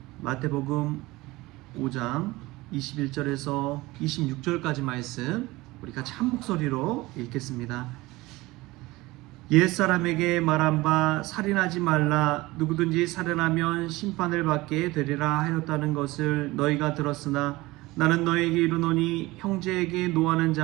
마태복음 5장 21절에서 26절까지 말씀 우리 같이 한 목소리로 읽겠습니다. 옛사람에게 말한 바 살인하지 말라, 누구든지 살인하면 심판을 받게 되리라 하였다는 것을 너희가 들었으나 나는 너희에게 이르노니 형제에게 노하는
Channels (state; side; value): quieter; left; 20.3 dB